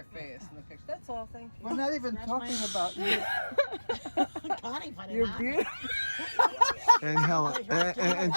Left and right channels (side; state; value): both; inverted; correlation -1.00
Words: face in the picture. That's all. Thank you. We're not even talking about you. Connie put it You're on. beautiful. And Helen and